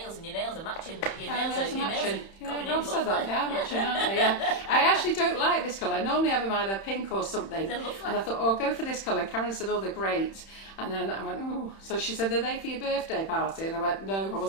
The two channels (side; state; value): right; late; 31 ms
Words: and your nails are matching. Your Nails are matching. going in Yeah, Rob said that. lovely. Yeah, matching, aren't they? Yeah. I actually don't like this colour. I normally have them either pink or something. They're lovely. And I thought, oh, I'll go for this colour. And Karen said, oh, they're great. And then I went, oh. So she said, are they for your birthday party? And I went, no, I